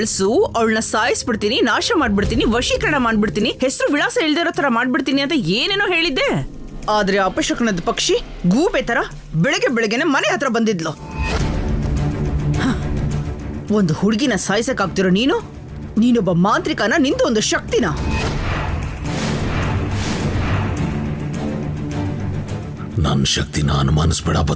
ಅವಳನ್ನ ಸಾಯಿಸ್ಬಿಡ್ತೀನಿ, ನಾಶ ಮಾಡ್ಬಿಡ್ತೀನಿ, ವಶೀಕರಣ ಮಾಡ್ಬಿಡ್ತೀನಿ, ಹೆಸರು ವಿಳಾಸ ಇಲ್ದಿರೋ ತರ ಮಾಡ್ಬಿಡ್ತೀನಿ ಅಂತ ಏನೇನೋ ಹೇಳಿದ್ದೆ. ಆದ್ರೆ ಅಪಶಕನದ ಪಕ್ಷಿ ಗೂಬೆ ತರ ಬೆಳಗ್ಗೆ ಬೆಳಗ್ಗೆನೆ ಮನೆ ಹತ್ರ ಬಂದಿದ್ಲು. ಒಂದು ಹುಡುಗಿನ ಸಾಯಿಸಕ್ಕಾಗ್ತಿರೋ ನೀನೊಬ್ಬ ಮಾಂತ್ರಿಕನ, ನಿಂದು ಒಂದು ಶಕ್ತಿನ. ನನ್ನ ಶಕ್ತಿನ ಅನುಮಾನಿಸ್ಬೇಡ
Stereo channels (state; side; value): identical; both; correlation 1.00